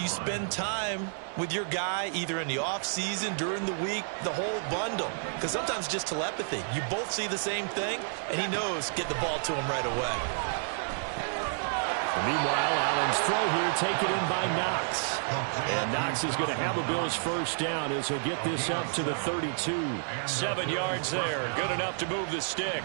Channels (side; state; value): left; silent; 58 dB below the other